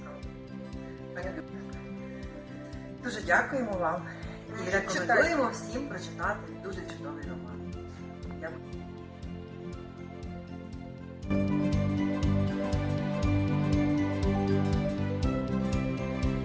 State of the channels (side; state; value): both; identical; correlation 1.00